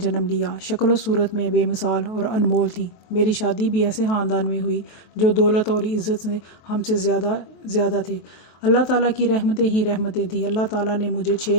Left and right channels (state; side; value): late; right; 23 ms